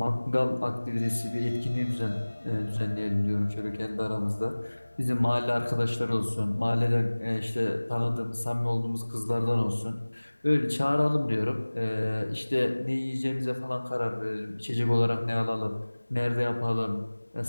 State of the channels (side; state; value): both; inverted; correlation -1.00